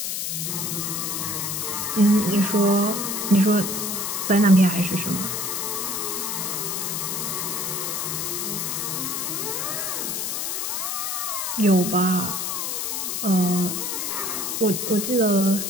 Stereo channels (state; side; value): noise; left; hiss, 2 dB below the sound